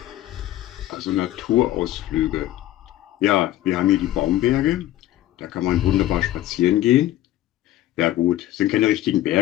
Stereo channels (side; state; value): right; quieter; 14.3 dB